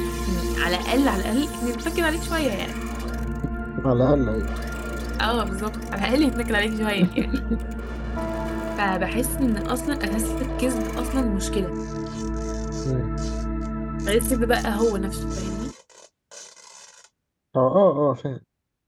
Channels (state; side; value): identical; both; correlation 1.00